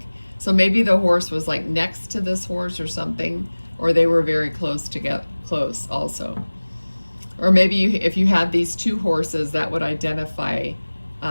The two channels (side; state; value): both; inverted; correlation -1.00